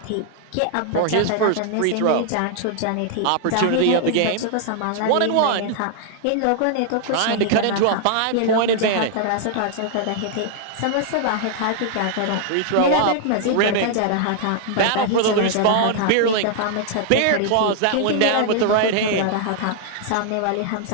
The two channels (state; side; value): different; both; correlation 0.00